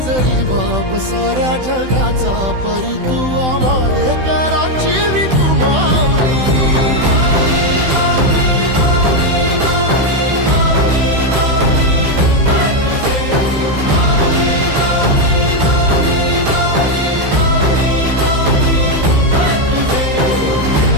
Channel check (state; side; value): late; left; 16 ms